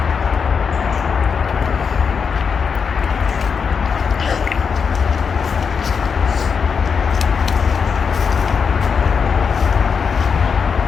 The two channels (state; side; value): quieter; right; 6.1 dB